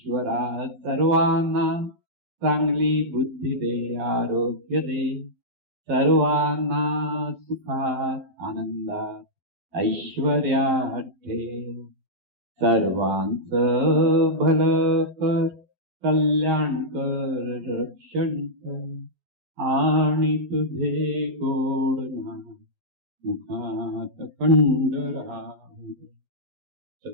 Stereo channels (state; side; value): late; left; 11 ms